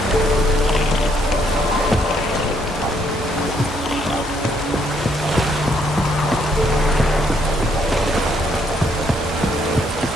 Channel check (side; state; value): both; normal; correlation 0.71